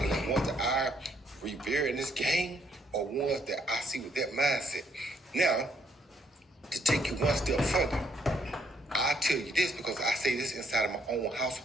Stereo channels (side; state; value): both; normal; correlation 0.69